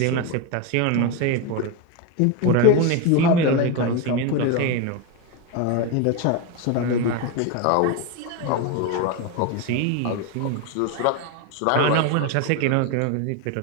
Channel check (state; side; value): different; both; correlation 0.03